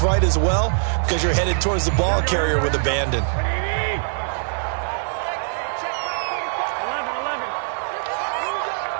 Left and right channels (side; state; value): left; silent; digital silence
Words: as well because you're headed towards the ball carrier with abandon. Check back 11.